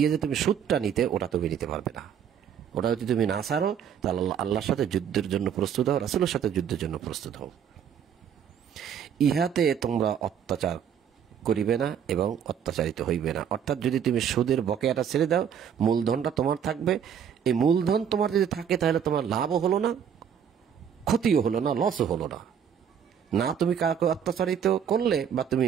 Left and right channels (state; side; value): quieter; left; 8.2 dB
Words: যে তুমি সুদটা নিতে, ওটা তুমি নিতে পারবে না। ওটা যদি তুমি না ছাড়ো, তাহলে আল্লাহর সাথে যুদ্ধের জন্য প্রস্তুত হও, রাসূলের সাথে যুদ্ধের জন্য প্রস্তুত হও। ইহাতে তোমরা অত্যাচার করিবে না এবং অত্যাচারিত হইবে না। অর্থাৎ যদি তুমি সুদের বকেয়াটা ছেড়ে দাও, মূলধনটা তোমার থাকবে। এই মূলধন তোমার যদি থাকে, তাহলে তোমার লাভও হলো না, ক্ষতিও হলো না, লসও হলো না। না তুমি কাউকে অত্যাচারিত করলে, বা তুমি